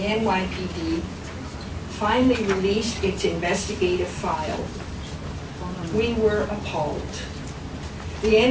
NYPD finally released its investigative file. We were appalled. The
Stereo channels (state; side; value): identical; both; correlation 1.00